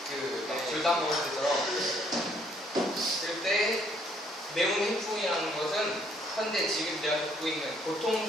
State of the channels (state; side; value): normal; both; correlation 0.66